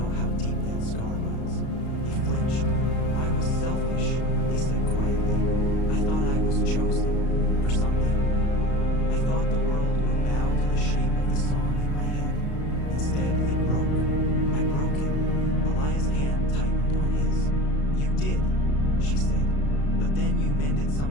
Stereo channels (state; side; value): late; right; 34 ms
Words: how deep that scar runs." He flinched. "I was selfish," he said quietly. "I thought I was chosen for something. I thought the world would bow to the shape of the song in my head. Instead, it broke. I broke it." Elias' hand tightened on his. "You did," she said. "But then you mended